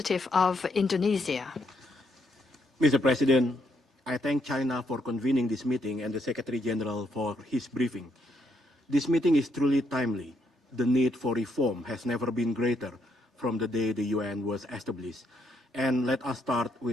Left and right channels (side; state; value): both; normal; correlation 0.75